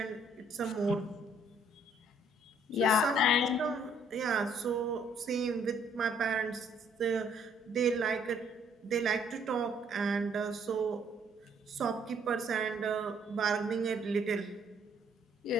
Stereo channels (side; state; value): both; normal; correlation 0.64